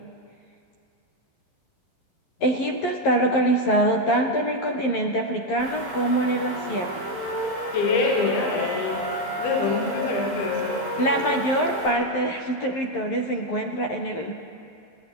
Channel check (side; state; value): right; late; 11 ms